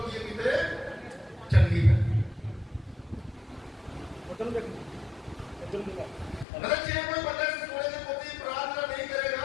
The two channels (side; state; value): right; drops out; at 6.5 s